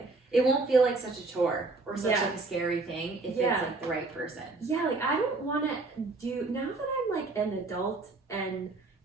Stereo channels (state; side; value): quieter; left; 3.5 dB